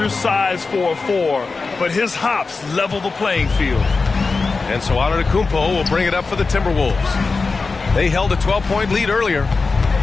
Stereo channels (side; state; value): right; quieter; 4.2 dB